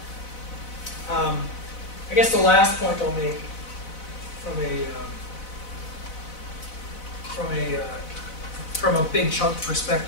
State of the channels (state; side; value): late; right; 4.0 ms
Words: about. I guess the last point I'll make from a big chunk